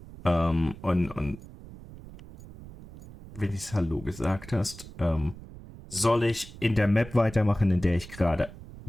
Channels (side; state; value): right; noise; rumble, 17 dB below the sound